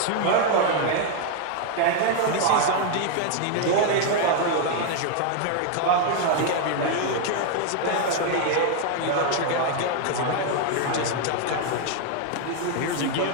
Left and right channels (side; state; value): both; different; correlation 0.00